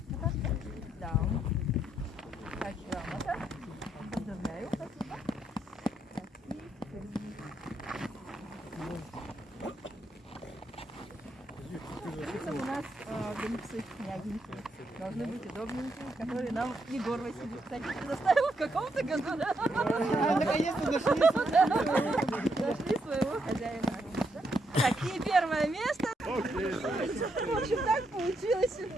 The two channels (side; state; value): both; normal; correlation 0.78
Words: Да. Так, грамота. Поздравляю. Спасибо. Так, и у нас гонцы, княгинки. Должны быть удобненькие, которые нам Егор Васильевич, кстати, предоставил в каком-то году. Наконец-то нашли. Нашли своего хозяина. Так, и первое место. В общем, так получилось.